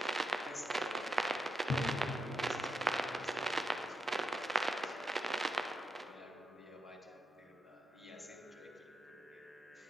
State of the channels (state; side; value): normal; both; correlation 0.83